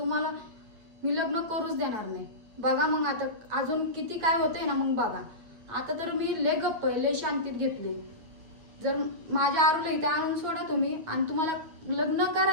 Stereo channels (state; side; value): late; left; 9.2 ms